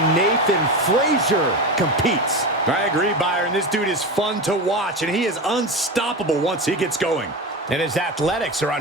Nathan Frazier competes. I agree, Byron. This dude is fun to watch, and he is unstoppable once he gets going. And his athletics are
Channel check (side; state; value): both; normal; correlation 0.23